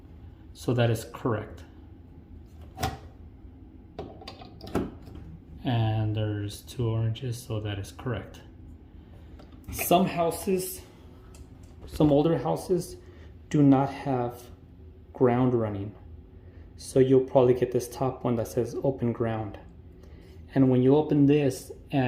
so that is correct. And there's 2 oranges, so that is correct. Some houses, some older houses, do not have ground running. So you'll probably get this top one that says open ground. And when you open this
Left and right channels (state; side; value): identical; both; correlation 1.00